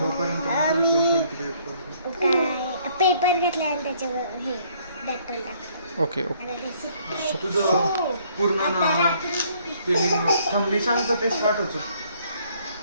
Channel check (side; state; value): both; inverted; correlation -0.63